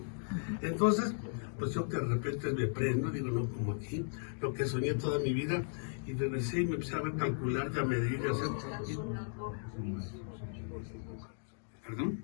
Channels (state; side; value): silent; right; digital silence